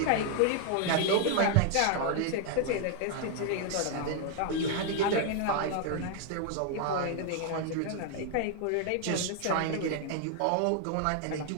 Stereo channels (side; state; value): both; different; correlation 0.00